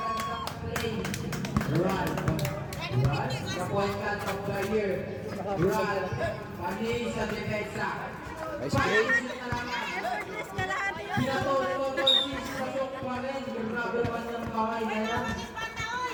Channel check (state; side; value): identical; both; correlation 1.00